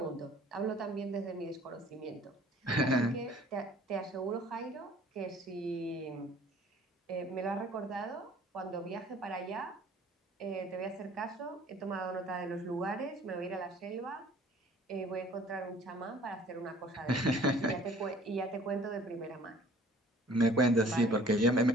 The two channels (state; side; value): normal; both; correlation 0.52